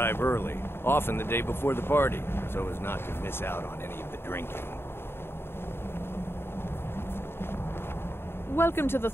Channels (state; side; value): late; right; 0.11 ms